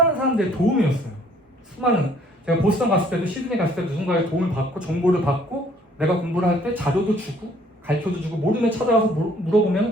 사람들의 도움이었어요. 수많은 제가 보스턴 갔을 때도 시드니 갔을 때도 누군가의 도움을 받고 정보를 받고 내가 공부를 할 때 자료도 주고 가르쳐도 주고 모르면 찾아가서 물어보면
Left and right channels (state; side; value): normal; both; correlation 0.61